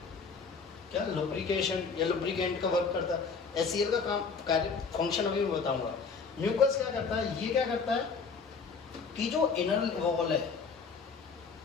क्या, लुब्रिकेशन या लुब्रिकेंट का वर्क करता है। एचसीएल का काम, कार्य, फंक्शन अभी मैं बताऊंगा। म्यूकस क्या करता है, ये क्या करता है कि जो इनर वॉल है,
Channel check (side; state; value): right; quieter; 5.2 dB